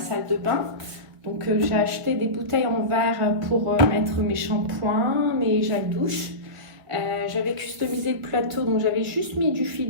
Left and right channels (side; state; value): left; late; 2.2 ms